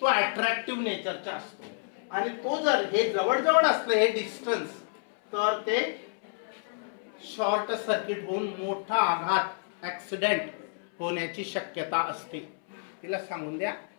अट्रॅक्टिव्ह नेचरचा असतो. आणि तो जर हे जवळ असलं हे डिस्टन्स, तर ते शॉर्ट सर्किट होऊन मोठा आघात, ऍक्सिडेंट होण्याची शक्यता असते. तिला सांगून द्या,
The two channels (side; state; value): right; silent; 58 dB below the other